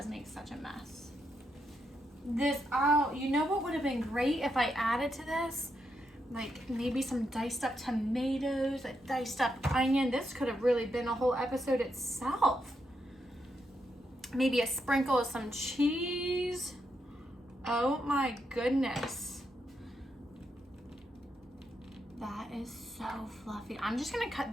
make such a mess. This, oh, you know what would have been great if I added to this? Like maybe some diced up tomatoes, a diced up onion. This could have really been a whole episode itself. Maybe a sprinkle of some cheese. Oh my goodness. That is so fluffy. I'm just gonna cut,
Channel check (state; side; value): normal; both; correlation 0.82